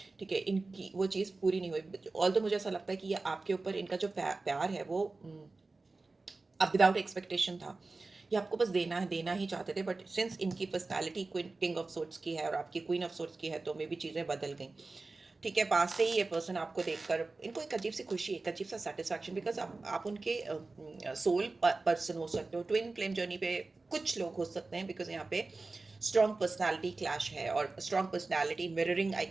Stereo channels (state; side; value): quieter; left; 3.5 dB